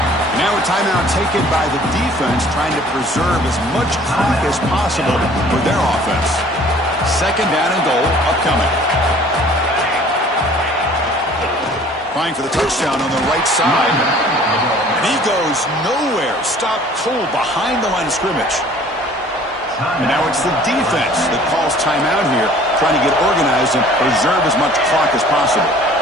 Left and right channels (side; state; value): both; normal; correlation 0.52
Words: Now a timeout taken by the defense, trying to preserve as much clock as possible for their offense. 2nd down and goal upcoming. Trying for the touchdown on the right side. And he goes nowhere. Stopped cold behind the line of scrimmage. And now it's the defense that calls timeout here, trying to get organized and preserve as much clock as possible.